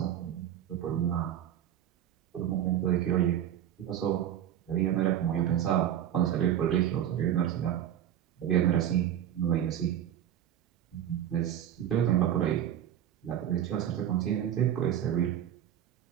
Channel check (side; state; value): left; quieter; 10.7 dB